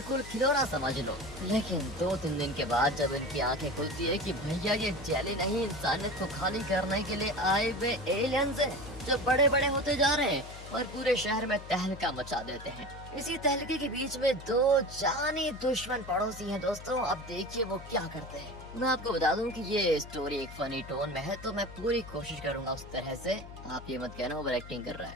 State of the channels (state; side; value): noise; left; hum, 14 dB below the sound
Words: खिलौना समझ लो। लेकिन 2-3 दिन के बाद जब इनकी आंखें खुलती है कि भैया ये जेली नहीं, इंसानियत को खाली करने के लिए आए हुए एलियंस हैं जो बड़े बड़े होते जा रहे हैं और पूरे शहर में तहलका मचा देते हैं। इसी तहलके के बीच में 2 जानी दुश्मन पड़ोसी हैं दोस्तों। अब देखिए वो क्या करते हैं। मैं आपको बता दूं कि ये स्टोरी एक फनी टोन में है, तो मैं पूरी कोशिश करूंगा उस तरह से। आप ये मत कहना ओवर एक्टिंग कर रहा